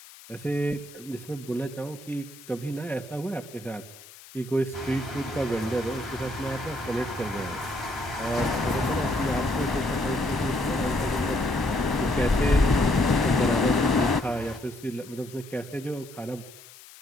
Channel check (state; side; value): noise; left; hiss, 20 dB below the sound